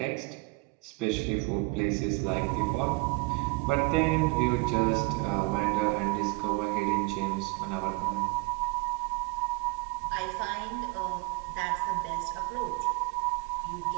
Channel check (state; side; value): quieter; left; 26.9 dB